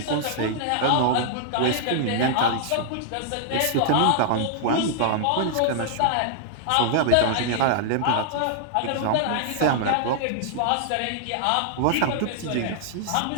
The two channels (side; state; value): both; different; correlation -0.01